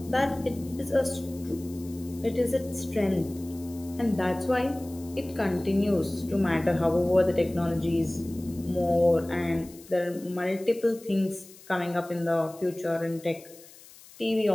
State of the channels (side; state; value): left; noise; hiss, 21 dB below the sound